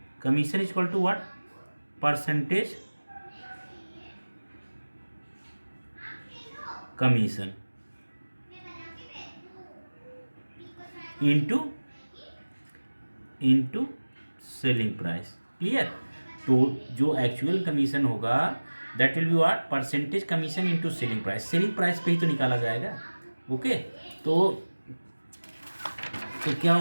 Commission is equal to what? Percentage commission into selling price. Clear? तो जो actual commission होगा that will be what? Percentage commission into selling price. Selling price पे ही तो निकाला जाएगा. Okay, तो क्या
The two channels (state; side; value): inverted; both; correlation -1.00